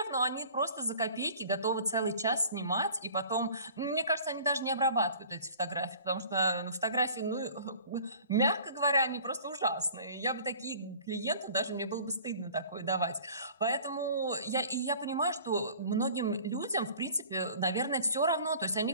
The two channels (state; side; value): inverted; both; correlation -0.47